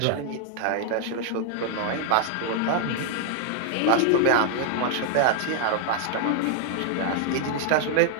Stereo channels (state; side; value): different; both; correlation 0.00